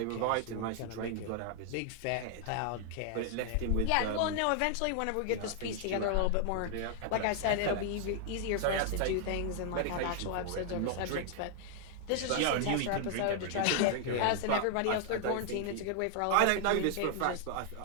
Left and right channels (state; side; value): different; both; correlation 0.00